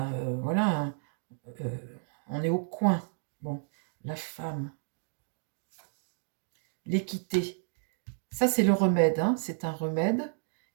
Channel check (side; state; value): left; silent; digital silence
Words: voilà, hein, euh, on est au coin. Bon, la femme. L'équité. Ça, c'est le remède, hein, c'est un remède.